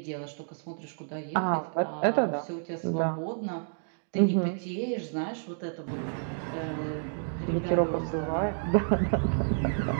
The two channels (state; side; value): silent; left; digital silence